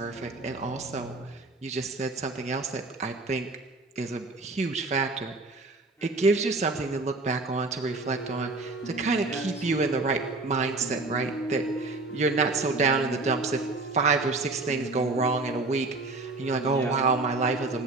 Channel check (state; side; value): quieter; left; 3.3 dB